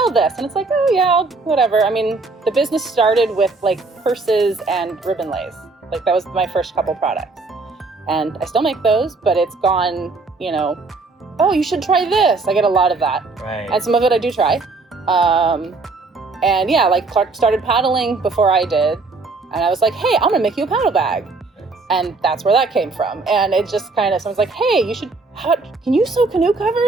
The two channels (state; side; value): quieter; left; 3.7 dB